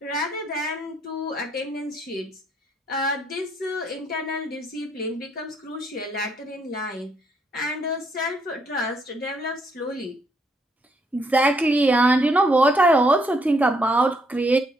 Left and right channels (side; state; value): both; normal; correlation 0.71